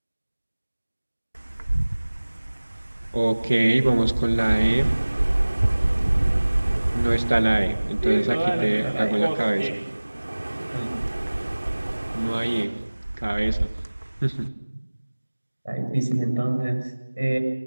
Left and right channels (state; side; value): inverted; both; correlation -1.00